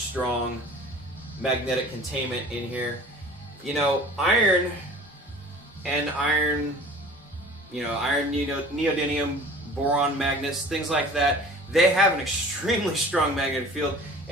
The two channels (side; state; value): both; normal; correlation 0.44